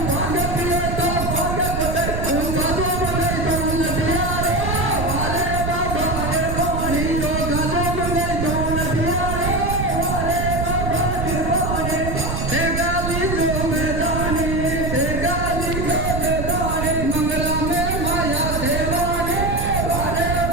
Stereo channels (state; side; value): noise; right; rumble, 2 dB below the sound